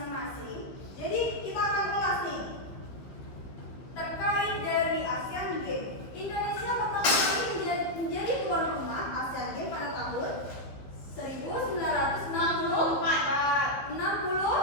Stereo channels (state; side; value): late; right; 15 ms